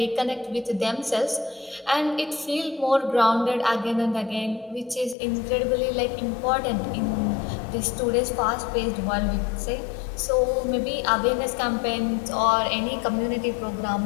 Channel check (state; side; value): drops out; right; at 5.2 s